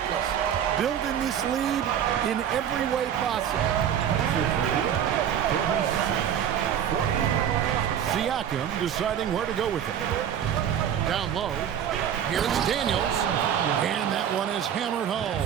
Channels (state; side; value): quieter; left; 9.3 dB